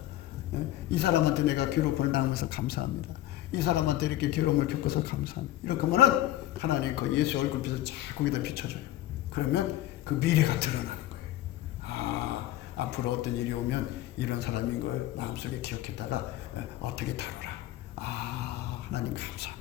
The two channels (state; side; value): quieter; right; 14.6 dB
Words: 이 사람한테 내가 괴롭힘을 당해서 감사합니다. 이 사람한테 이렇게 괴로움을 겪어서 감사합니다. 이렇게 하면은 하나님 그 예수 얼굴빛을 쫙 거기다 비춰줘요. 그러면 그 미래가 드러나는 거예요. 앞으로 어떤 일이 오면 이런 사람인 걸 마음속에 기억했다가 어떻게 다루라. 하나님